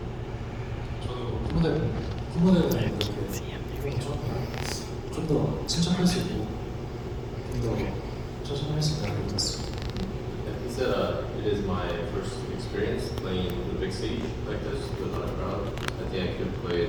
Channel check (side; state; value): both; identical; correlation 1.00